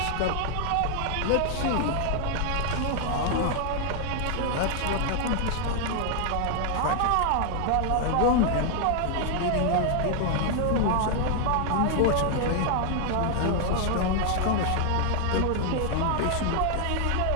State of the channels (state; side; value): different; both; correlation 0.00